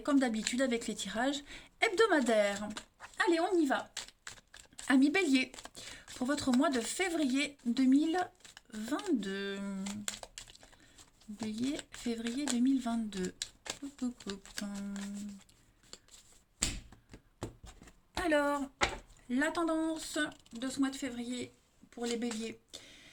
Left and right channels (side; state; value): both; identical; correlation 1.00